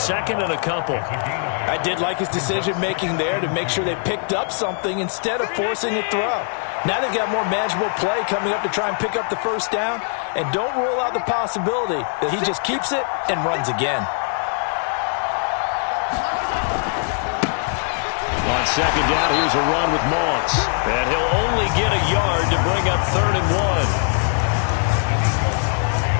and a couple. I did like his decision-making there to make sure they picked up something instead of forcing a throw. Now they've got more manageable play coming up to try and pick up the first down. And don't rule out the possibility that he just keeps it and runs again. On second down, here's a run with Moss. And he'll only get a yard to bring up 3rd and 1.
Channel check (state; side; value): silent; right; 59 dB below the other